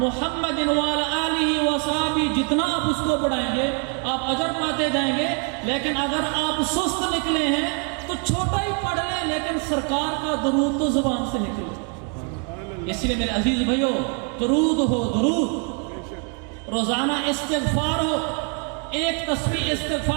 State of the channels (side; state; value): left; quieter; 39.4 dB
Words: وعلی آلہ وصحبہ، جتنا آپ اس کو بڑھائیں گے آپ اجر پاتے جائیں گے۔ لیکن اگر آپ سست نکلے ہیں تو چھوٹا ہی پڑھ لیں، لیکن سرکار کا درود تو زبان سے نکلے۔ اس لیے میرے عزیز بھائیو، درود ہو، درود روزانہ، استغفار ہو، ایک تسبیح